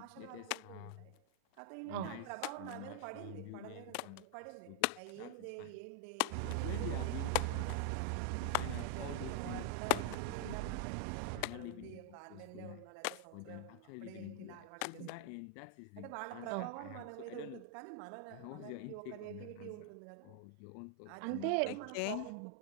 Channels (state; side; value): different; both; correlation 0.00